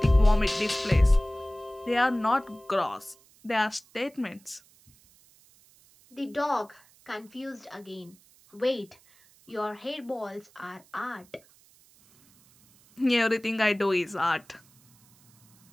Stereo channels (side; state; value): right; noise; hiss, 29 dB below the sound